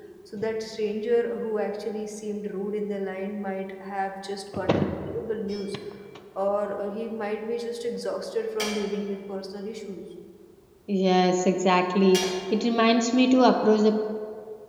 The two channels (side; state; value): both; identical; correlation 1.00